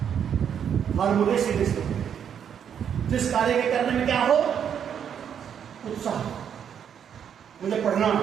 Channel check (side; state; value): left; quieter; 8.4 dB